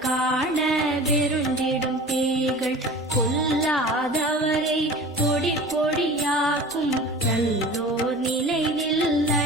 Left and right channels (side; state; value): both; normal; correlation 0.39